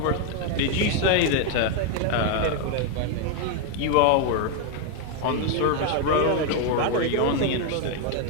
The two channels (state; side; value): different; both; correlation 0.01